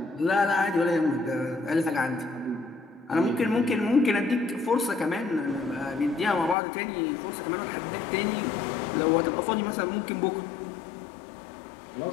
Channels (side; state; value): right; drops out; at 6.6 s